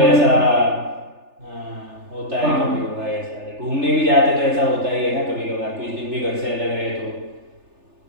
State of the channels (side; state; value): left; late; 3.4 ms